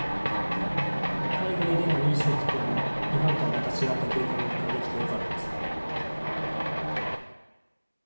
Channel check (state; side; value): inverted; both; correlation -1.00